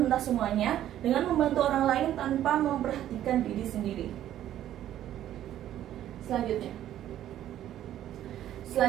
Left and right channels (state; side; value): quieter; left; 12.0 dB